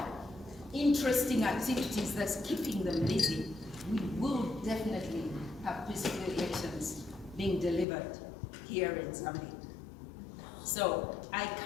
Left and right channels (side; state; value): right; drops out; at 7.9 s